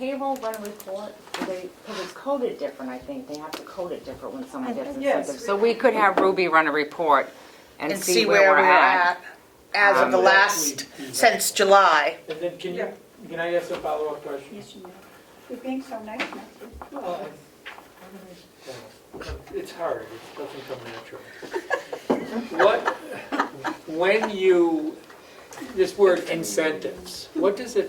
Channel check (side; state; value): both; identical; correlation 1.00